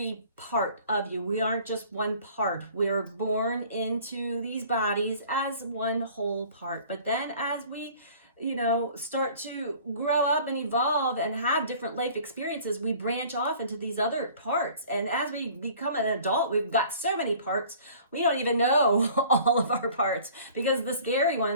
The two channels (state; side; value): inverted; both; correlation -0.50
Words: part of you. We aren't just one part. We're born into these bodies as one whole part. But then as we, start to grow up and evolve and have different life experiences, we branch off into these other parts. And as we become an adult, we've got so many parts, we don't even know all of our parts, because the scary